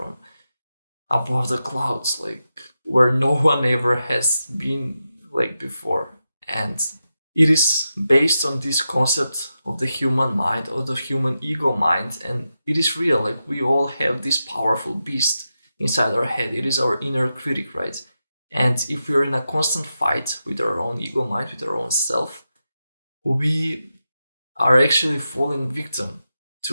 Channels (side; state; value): both; inverted; correlation -0.90